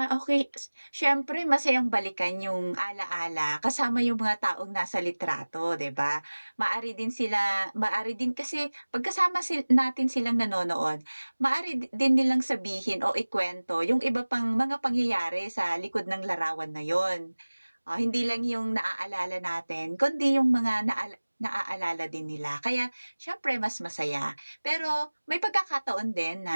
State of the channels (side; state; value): both; inverted; correlation -1.00